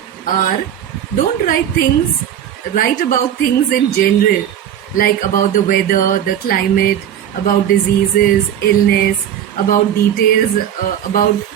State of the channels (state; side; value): quieter; left; 10.1 dB